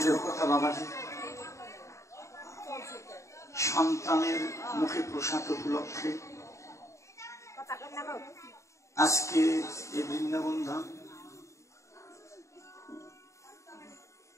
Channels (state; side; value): late; right; 0.14 ms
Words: বাবাজি সন্তানের মুখে প্রসাদ উপলক্ষে আজকে এই বৃন্দাবন ধাম